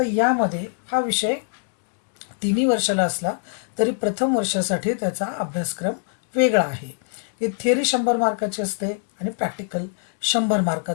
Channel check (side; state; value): right; silent; digital silence